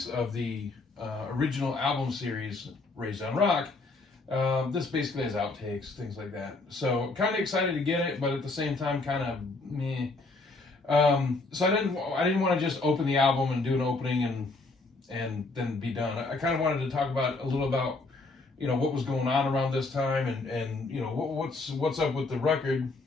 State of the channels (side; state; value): right; quieter; 3.4 dB